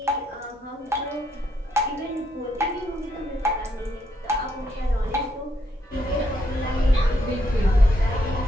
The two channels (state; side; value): normal; both; correlation 0.75